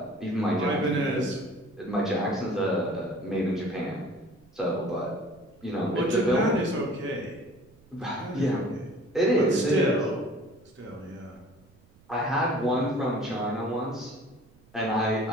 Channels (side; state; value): right; noise; rumble, 28 dB below the sound